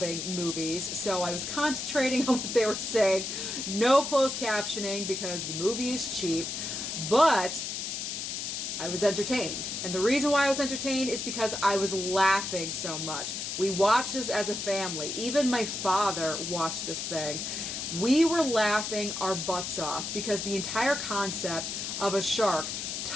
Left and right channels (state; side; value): noise; left; hiss, 4 dB below the sound